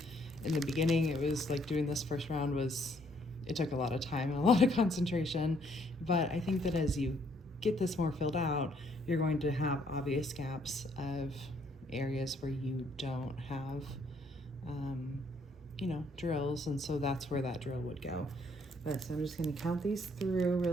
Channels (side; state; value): both; normal; correlation 0.67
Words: In the beginning, it was like doing this first round it took a lot of time and a lot of concentration. But I think that as you get this more filled out, you're going to have obvious gaps of areas where you don't have, you know, drills. And so that's where that drill would go. But so I'm just going to count these through